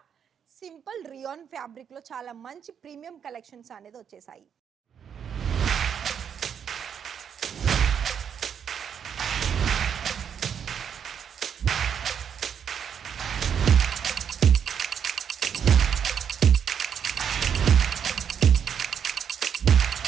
simple rayon fabric లో చాలా మంచి ప్రీమియం కలెక్షన్స్ అనేది వచ్చేసాయి.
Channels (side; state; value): left; quieter; 7.9 dB